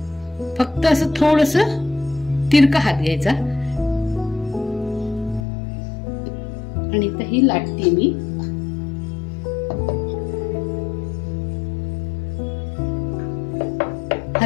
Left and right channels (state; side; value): drops out; right; at 5.4 s